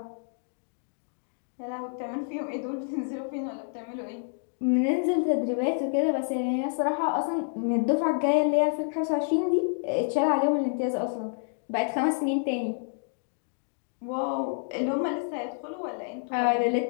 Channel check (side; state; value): right; silent; digital silence